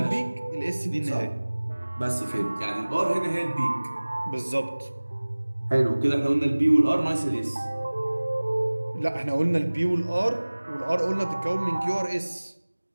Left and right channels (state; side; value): inverted; both; correlation -1.00